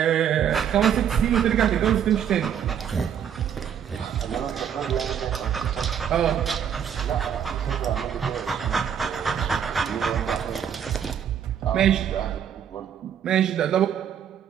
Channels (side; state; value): left; quieter; 8.7 dB